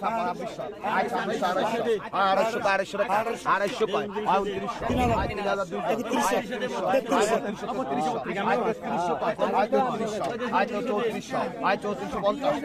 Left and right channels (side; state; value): both; identical; correlation 1.00